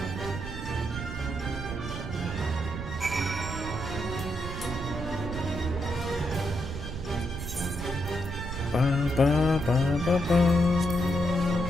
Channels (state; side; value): noise; right; rumble, 7 dB below the sound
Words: Ba, ba, ba, ba, ba.